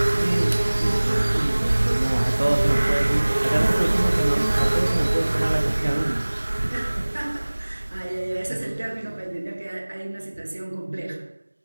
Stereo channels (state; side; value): inverted; both; correlation -1.00